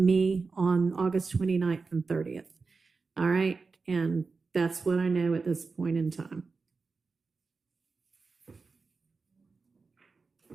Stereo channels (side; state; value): left; quieter; 4.4 dB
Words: on August 29th and 30th. All right, and that's what I know at this point in time. All